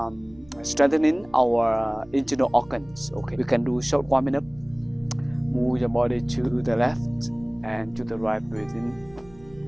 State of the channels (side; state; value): right; noise; hum, 25 dB below the sound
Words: strengthening our internal organs. Okay, we can do short warming up. Move your body to the left and to the right, breathing